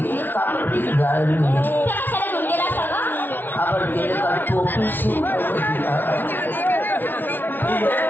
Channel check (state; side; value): late; right; 0.093 ms